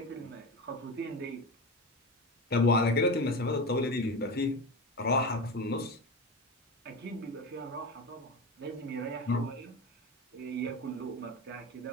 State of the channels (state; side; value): normal; both; correlation 0.23